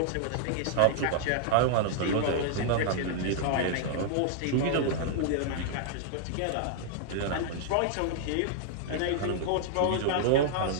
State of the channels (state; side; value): different; both; correlation -0.01